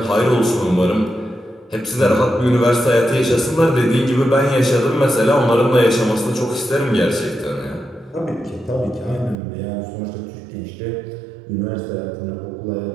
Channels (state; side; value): drops out; left; at 9.3 s